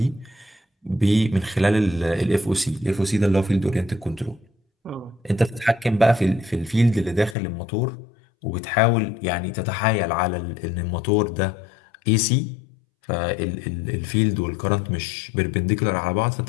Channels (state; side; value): drops out; right; at 7.4 s